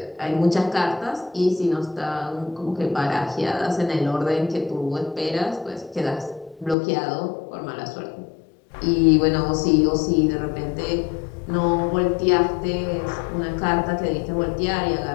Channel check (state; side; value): drops out; right; at 6.8 s